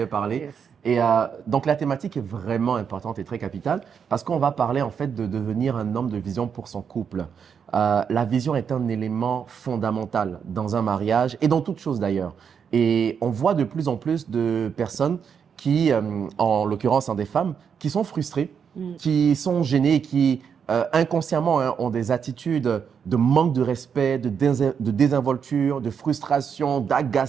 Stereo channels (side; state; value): left; quieter; 7.0 dB